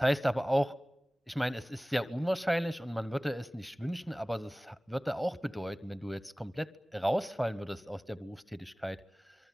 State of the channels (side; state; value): both; normal; correlation 0.98